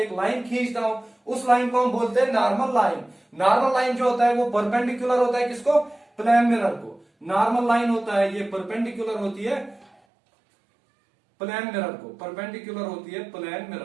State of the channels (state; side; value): drops out; left; at 9.9 s